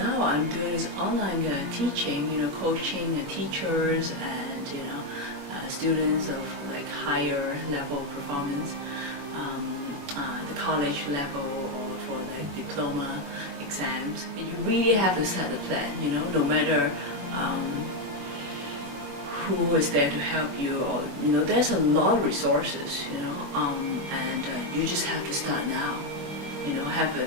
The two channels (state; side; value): late; left; 21 ms